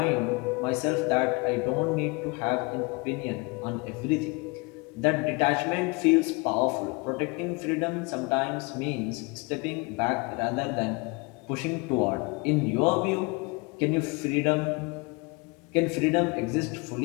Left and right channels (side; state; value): right; quieter; 28.0 dB